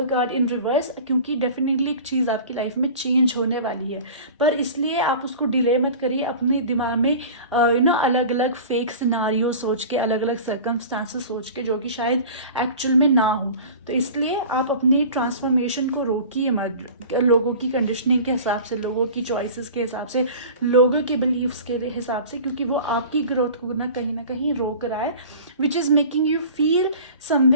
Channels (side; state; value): both; inverted; correlation -0.39